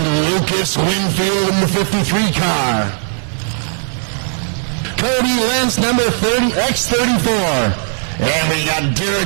Lucas Winfield in the 53 car. Cody Lentz, number 30, X34. And we got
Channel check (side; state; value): left; silent; digital silence